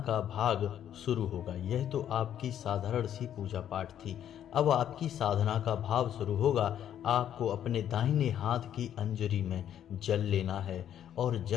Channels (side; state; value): right; quieter; 10.2 dB